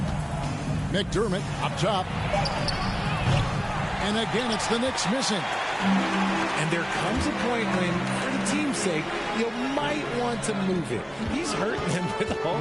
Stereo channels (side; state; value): both; identical; correlation 1.00